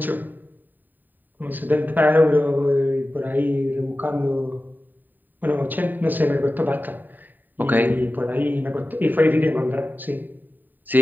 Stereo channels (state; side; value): late; left; 0.089 ms